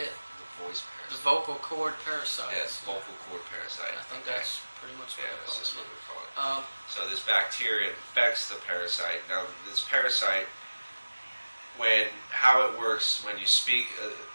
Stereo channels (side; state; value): both; inverted; correlation -1.00